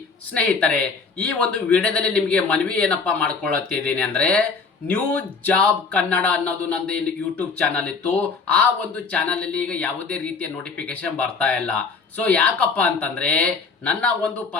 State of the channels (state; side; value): quieter; right; 4.7 dB